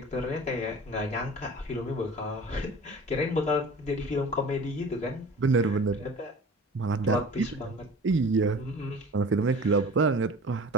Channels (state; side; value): normal; both; correlation 0.41